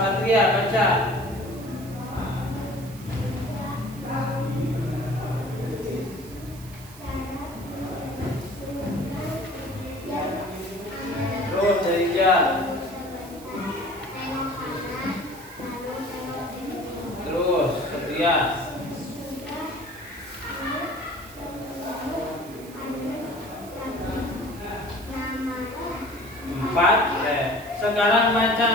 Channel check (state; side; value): noise; right; hiss, 19 dB below the sound